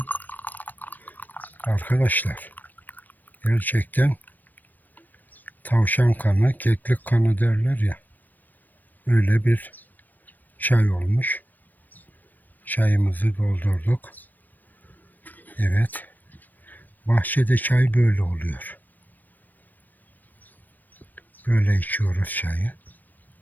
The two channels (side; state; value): right; late; 0.088 ms